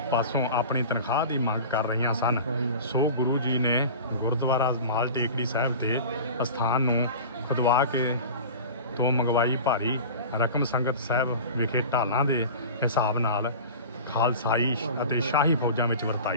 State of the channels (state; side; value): inverted; both; correlation -0.35